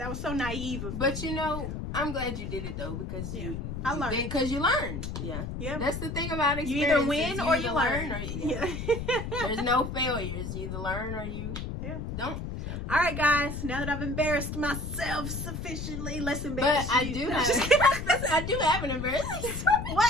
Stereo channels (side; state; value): left; noise; rumble, 5 dB below the sound